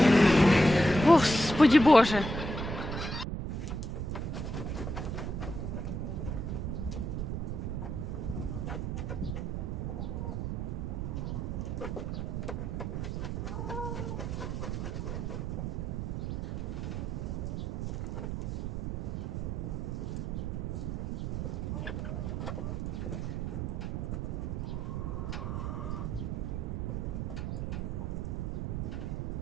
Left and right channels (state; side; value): noise; right; rumble, 2 dB below the sound